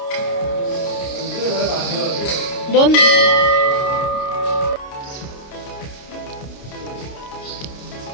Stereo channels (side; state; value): right; late; 29 ms